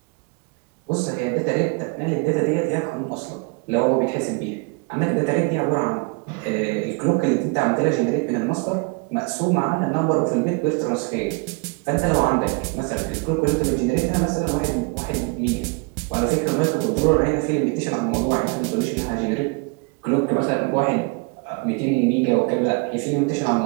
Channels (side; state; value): left; quieter; 31.5 dB